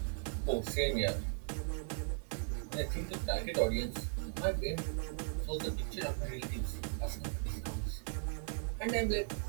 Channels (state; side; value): silent; left; digital silence